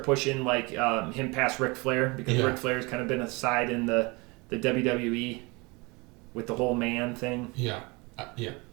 pushing like him past Ric Flair, because Ric Flair's kind of been aside in the WWE with the whole man thing. Yeah.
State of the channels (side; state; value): left; quieter; 26.7 dB